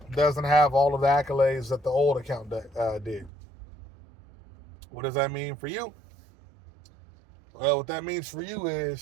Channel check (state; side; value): drops out; left; at 3.3 s